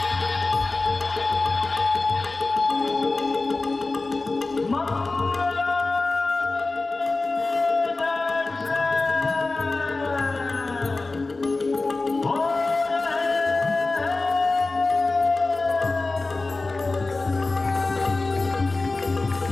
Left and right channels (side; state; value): right; quieter; 3.4 dB